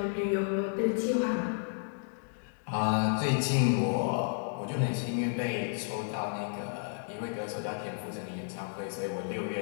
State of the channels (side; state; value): right; silent; digital silence